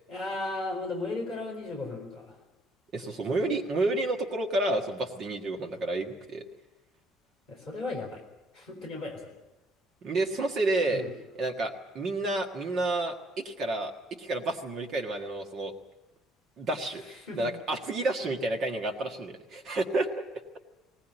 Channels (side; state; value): both; normal; correlation 0.65